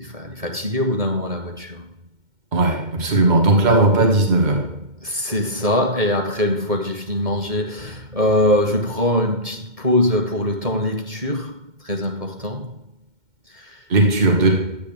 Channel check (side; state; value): left; late; 2.1 ms